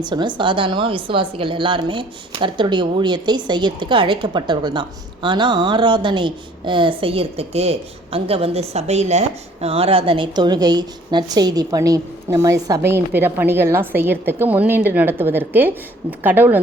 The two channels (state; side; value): normal; both; correlation 0.57